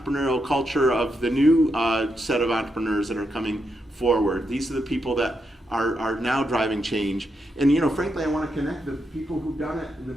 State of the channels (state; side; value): normal; both; correlation 0.83